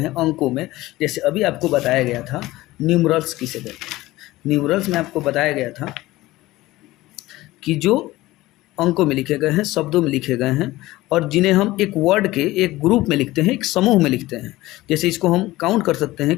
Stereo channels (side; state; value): right; quieter; 18.0 dB